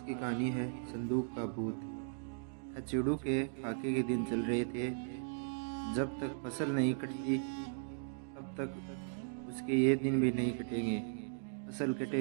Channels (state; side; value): silent; left; digital silence